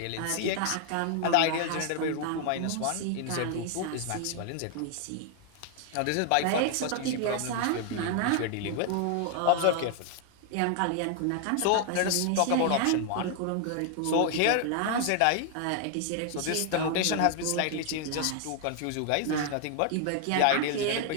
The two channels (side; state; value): both; different; correlation 0.00